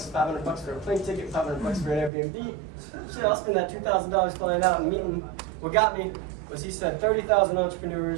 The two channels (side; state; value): left; drops out; at 2.1 s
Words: for a plane ticket, $500 for an Airbnb. Shit, I'll spend that $2,000 flying out and meeting. What got me was he said 30,000